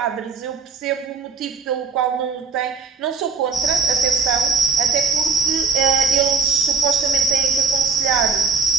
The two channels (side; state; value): left; quieter; 4.7 dB